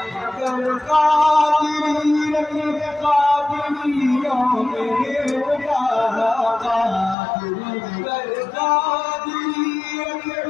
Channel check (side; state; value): right; drops out; at 7.2 s